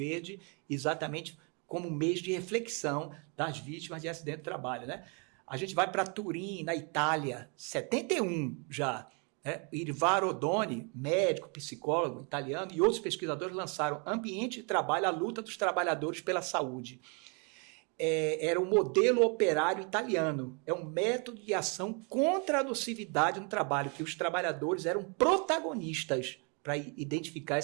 exatamente como mês de reflexão das vítimas de acidente de trabalho. Né? A gente vai para Turim, na Itália, 71 já. Né? Irvaro Odoni, médico, psicólogo italiano, e outros pesquisadores lançaram Ambiente de Trabalho, a luta dos trabalhadores pela saúde. Era um modelo operário italiano, é um método de ação contra a nocividade no trabalho, que os trabalhadores eram protagonistas para identificar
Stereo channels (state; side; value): quieter; left; 34.8 dB